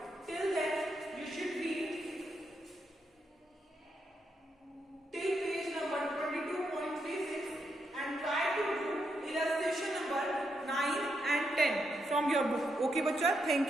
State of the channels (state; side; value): normal; both; correlation 0.81